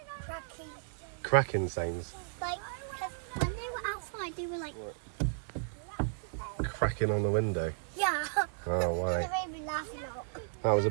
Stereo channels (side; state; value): left; silent; 55 dB below the other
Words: Cracking. Cracking sounds. Like, when they were outside, they were like... Cracking on the window. Yeah. Oh, why? It made me laugh a lot. That was a